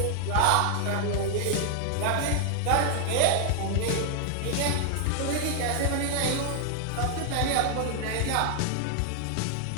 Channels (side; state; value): both; different; correlation 0.00